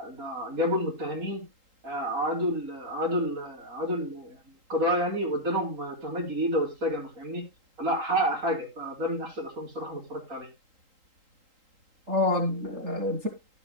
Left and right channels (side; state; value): left; late; 3.8 ms